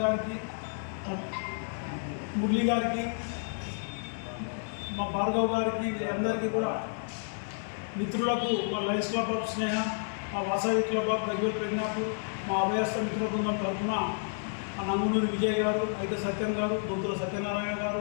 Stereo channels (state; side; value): silent; right; 57 dB below the other